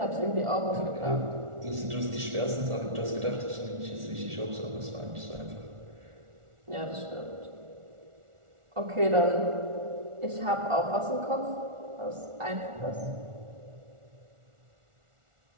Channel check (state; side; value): late; left; 1.4 ms